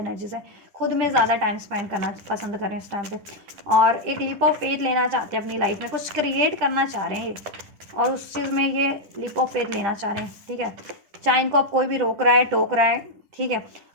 से खुद में ज़्यादा टाइम स्पेंड करना पसंद करें इस टाइम पे, और एक लीप ऑफ फेथ लेना चाहते हैं अपनी लाइफ में, कुछ क्रिएट करना चाह रहे हैं ये, और उस चीज़ में ये लीप ऑफ फेथ लेना चाह रहे हैं, ठीक है। चाहे इनको अब कोई भी रोक रहा है, टोक रहा है, ठीक है।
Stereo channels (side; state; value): left; late; 10 ms